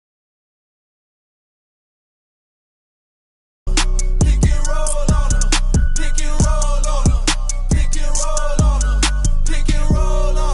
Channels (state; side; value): identical; both; correlation 1.00